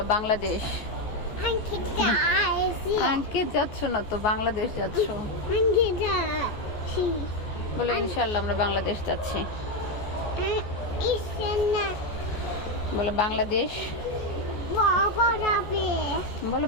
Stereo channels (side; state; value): right; late; 14 ms